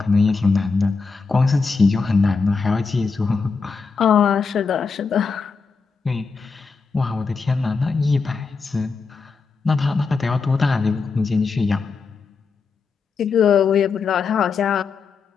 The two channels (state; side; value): quieter; right; 4.8 dB